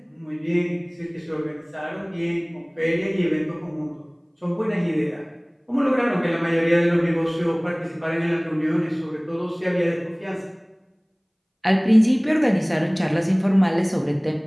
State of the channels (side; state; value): both; identical; correlation 1.00